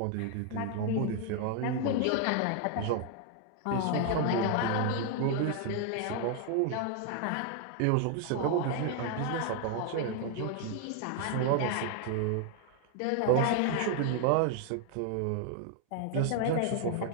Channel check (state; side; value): different; both; correlation 0.00